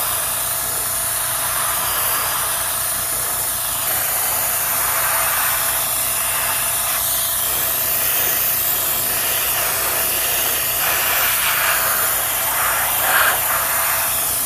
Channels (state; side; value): identical; both; correlation 1.00